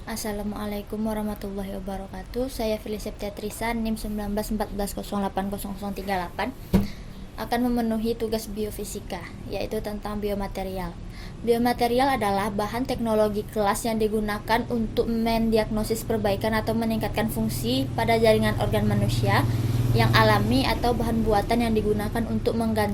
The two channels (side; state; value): both; identical; correlation 1.00